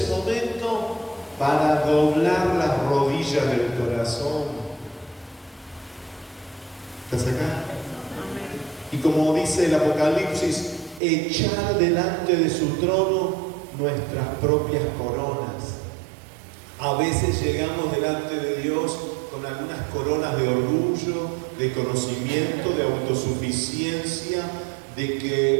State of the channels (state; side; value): drops out; left; at 11.0 s